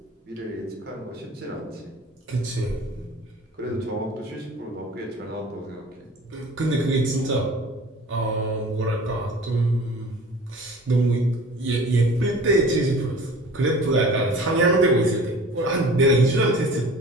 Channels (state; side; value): normal; both; correlation 0.44